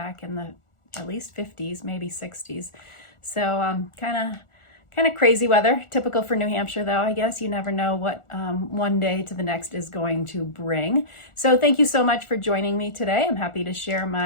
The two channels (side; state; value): right; late; 1.4 ms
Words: in the at least 50s, maybe 60s. So kind of crazy weather, typical for New Hampshire though, I guess. You never know what one day to the next is going to bring. So thank you so much for joining me today. I'm happy to share